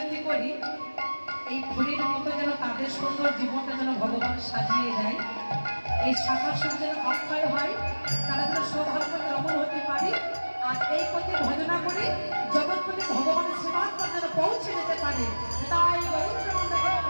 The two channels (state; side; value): inverted; both; correlation -1.00